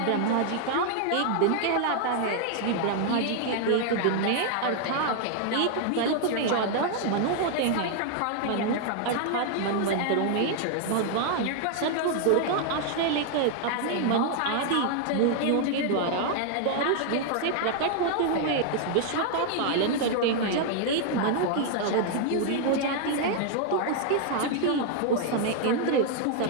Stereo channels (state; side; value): different; both; correlation 0.00